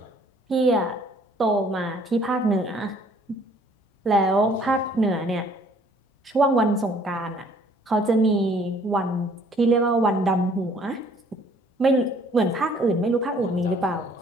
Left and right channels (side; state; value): both; normal; correlation 0.59